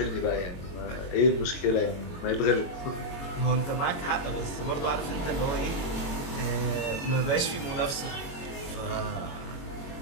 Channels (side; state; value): right; late; 22 ms